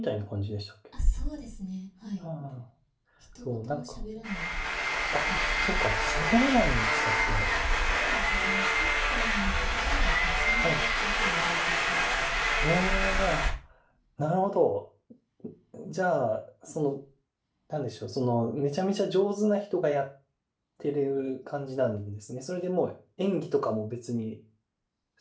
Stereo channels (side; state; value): both; identical; correlation 1.00